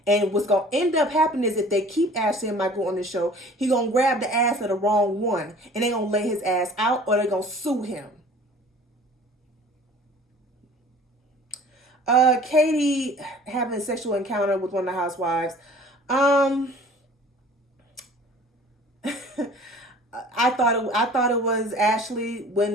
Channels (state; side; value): normal; both; correlation 0.48